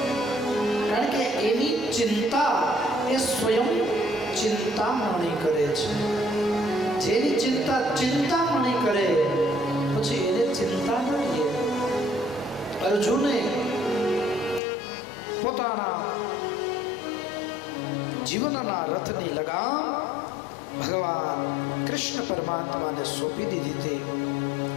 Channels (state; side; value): drops out; right; at 14.6 s